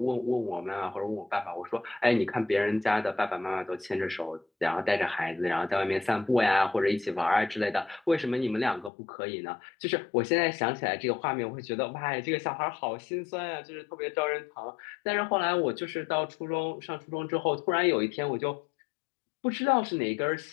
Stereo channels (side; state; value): right; drops out; at 8.9 s